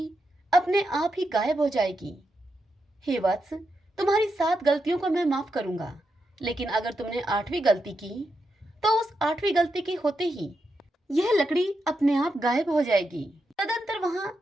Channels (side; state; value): both; normal; correlation 0.85